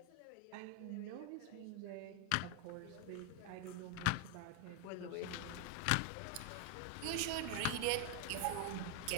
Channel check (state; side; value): different; both; correlation 0.01